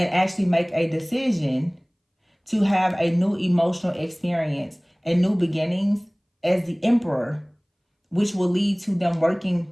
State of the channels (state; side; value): identical; both; correlation 1.00